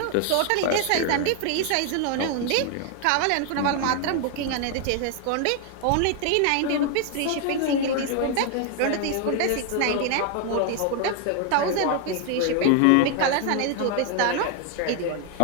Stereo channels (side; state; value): both; different; correlation 0.00